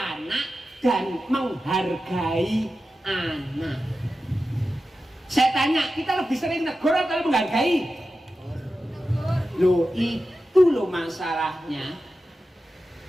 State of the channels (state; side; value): normal; both; correlation 0.92